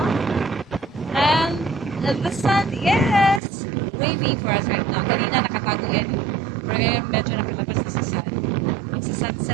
And the sun is waving for us right now. Kanina nakatago yan. Pero ngayon medyo nakalabas na sa sun.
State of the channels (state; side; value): drops out; left; at 3.4 s